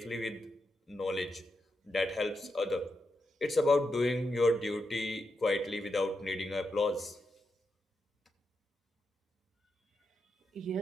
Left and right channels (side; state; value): both; normal; correlation 0.85